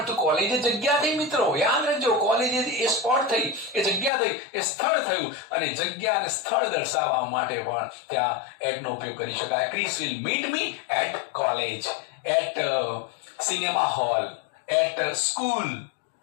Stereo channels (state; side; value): drops out; right; at 4.1 s